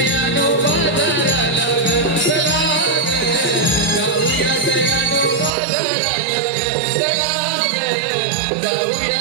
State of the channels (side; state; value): left; drops out; at 5.5 s